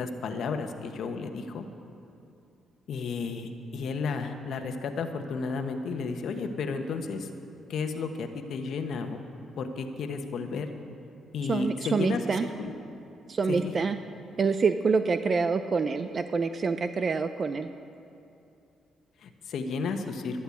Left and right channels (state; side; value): normal; both; correlation 0.78